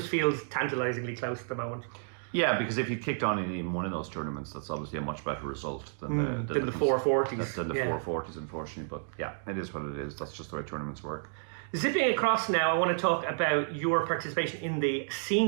feels tantalizingly close at the moment. Yeah, because if you kicked on in even one of those tournaments, that's obviously a much better result than the 440s. Than the 440s, unfortunately. But yeah, it is what it is. That's just the way tournaments work. Zipping across now, I want to talk about your participation in the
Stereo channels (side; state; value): left; silent; digital silence